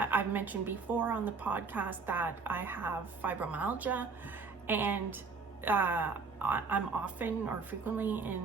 mentioned before on the podcast that I have fibromyalgia, and I'm often or frequently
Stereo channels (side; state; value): left; quieter; 4.7 dB